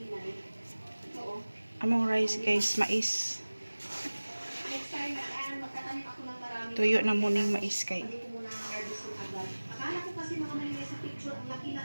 Among rice guys, mais. Tuyo na muning mais kay. Akala ko kasi mga may sa picture ang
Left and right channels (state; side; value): inverted; both; correlation -1.00